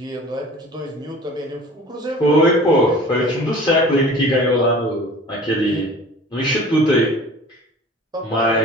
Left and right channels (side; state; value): both; normal; correlation 0.44